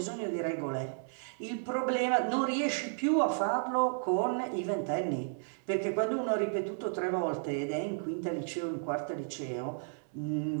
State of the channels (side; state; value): left; silent; 56 dB below the other